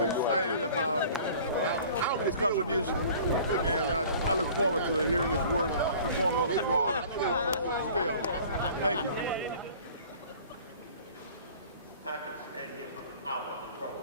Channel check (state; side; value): inverted; both; correlation -0.47